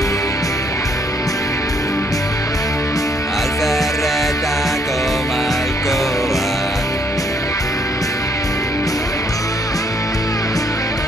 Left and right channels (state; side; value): normal; both; correlation 0.69